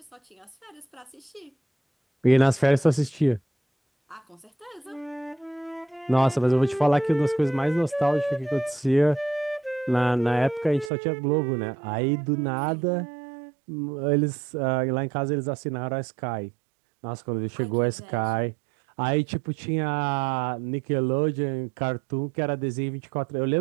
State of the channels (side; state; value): left; drops out; at 10.9 s